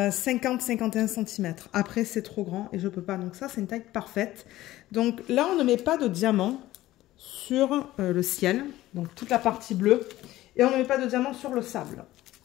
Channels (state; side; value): quieter; right; 15.9 dB